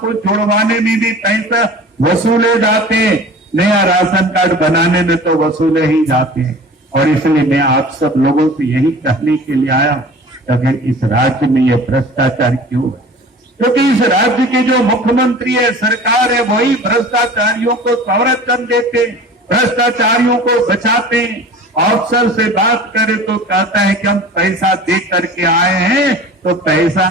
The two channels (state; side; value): normal; both; correlation 0.41